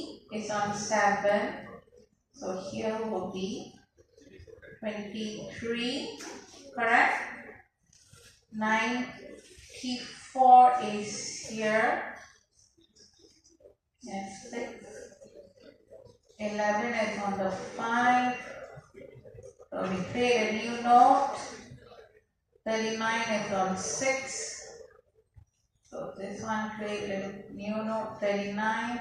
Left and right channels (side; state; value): both; identical; correlation 1.00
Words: is on 7. So here will be 23. Correct? 94 is here. Yes, 6. 11 is on the 5. So we create a new node. 39 is on 6. So this one create a new node. 39.